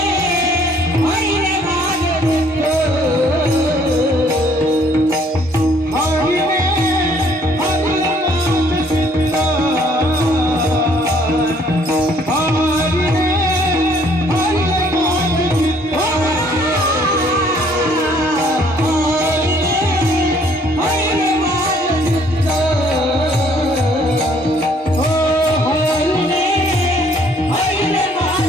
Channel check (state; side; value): normal; both; correlation 0.62